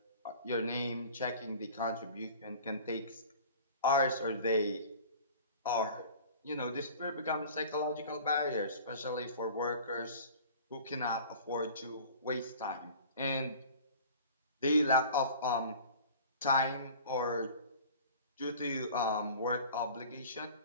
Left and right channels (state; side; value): inverted; both; correlation -0.43